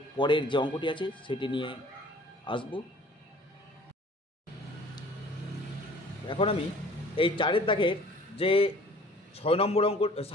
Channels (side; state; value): both; normal; correlation 0.51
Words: পরের যে অঙ্কটি আছে সেটি নিয়ে আসব। এখন আমি এই 4 দাগের যে 7 নম্বর